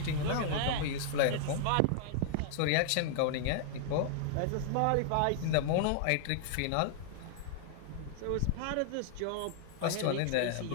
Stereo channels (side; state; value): both; different; correlation -0.01